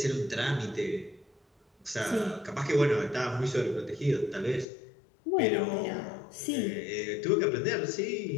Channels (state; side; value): drops out; right; at 4.7 s